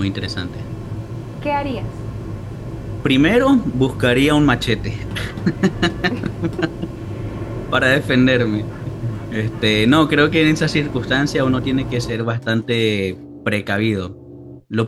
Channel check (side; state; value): both; identical; correlation 1.00